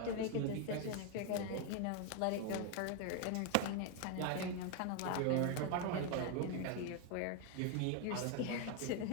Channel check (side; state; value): both; different; correlation 0.01